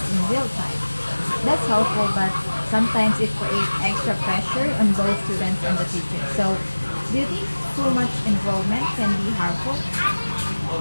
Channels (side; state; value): both; inverted; correlation -1.00